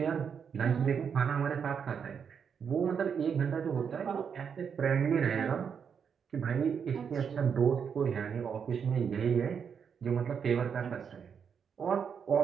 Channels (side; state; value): left; quieter; 7.0 dB